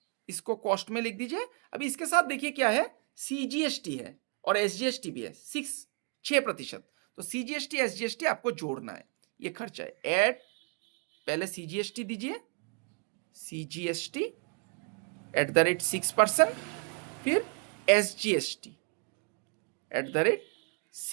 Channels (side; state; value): left; quieter; 36.3 dB